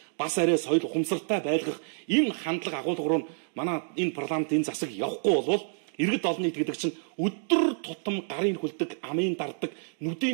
бас арай соёл ухамсартай байлгах энэ хандлага агуулга руу манай энэ парламент энэ засаг явахгүй болвол иргэд олон нийт гэдэг чинь өдөр тутам гарын хүлдэг, амын дарддаг,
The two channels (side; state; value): left; silent; 59 dB below the other